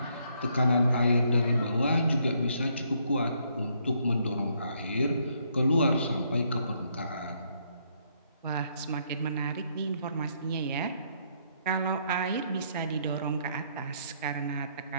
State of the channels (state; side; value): inverted; both; correlation -0.71